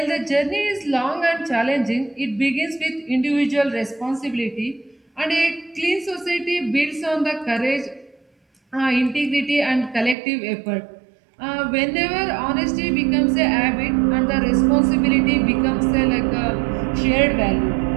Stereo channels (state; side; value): drops out; left; at 10.2 s